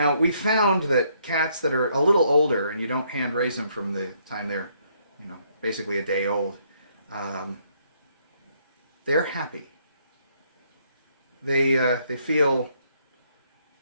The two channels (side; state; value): both; inverted; correlation -0.70